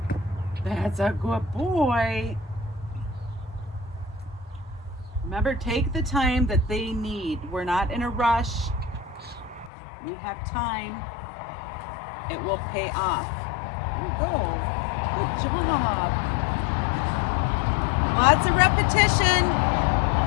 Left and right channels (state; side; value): drops out; right; at 9.7 s